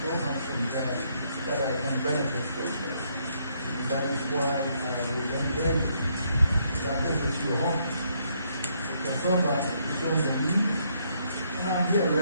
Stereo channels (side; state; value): both; inverted; correlation -0.72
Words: so much from there that I can benefit from. And that is why I will encourage you that this is your home. The server shows the need, and I'm here